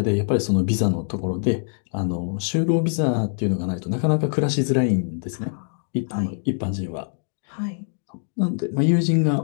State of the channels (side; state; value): right; silent; 63 dB below the other